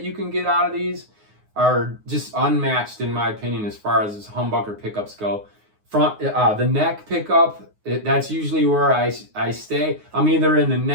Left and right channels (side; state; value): left; late; 9.6 ms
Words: you can get out of these are just unmatched in my opinion as far as humbucker pickups go. The neck pickup, that's usually where I stay. I'm either in the